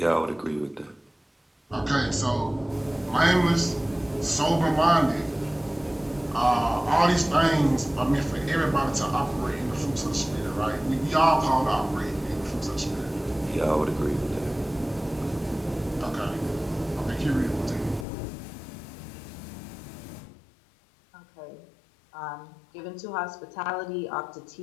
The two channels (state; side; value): drops out; right; at 18.1 s